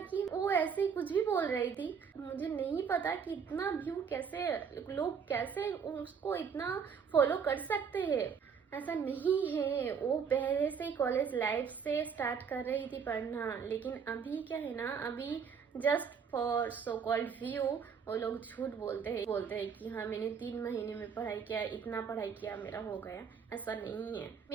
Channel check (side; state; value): left; quieter; 6.6 dB